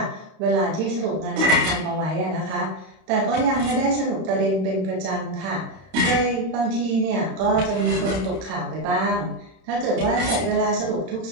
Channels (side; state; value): left; late; 31 ms